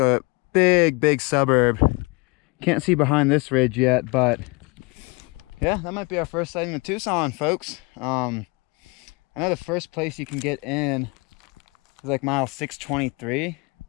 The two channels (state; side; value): quieter; right; 28.5 dB